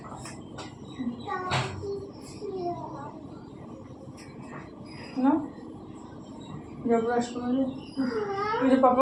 না, যাও ব্রাশ করে যাও। ওই যে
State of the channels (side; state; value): both; identical; correlation 1.00